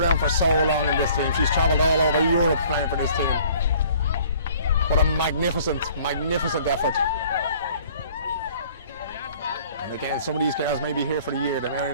for so long in this team. She's travelled all over Europe playing for this team. What a magnificent, magnificent effort. And again, some of these girls may be here for a year. They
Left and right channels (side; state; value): both; inverted; correlation -0.54